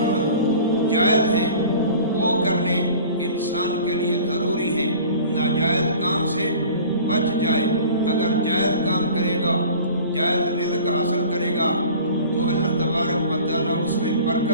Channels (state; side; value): inverted; both; correlation -0.43